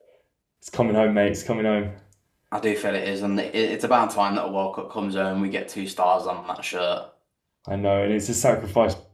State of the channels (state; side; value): identical; both; correlation 1.00